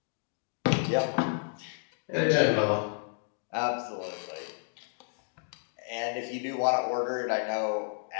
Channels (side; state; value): right; silent; 56 dB below the other